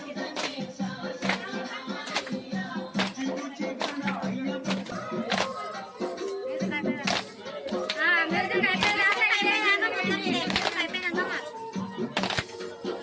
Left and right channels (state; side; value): identical; both; correlation 1.00